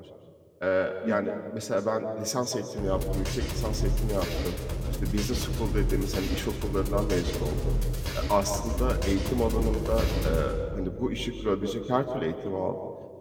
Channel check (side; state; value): both; identical; correlation 1.00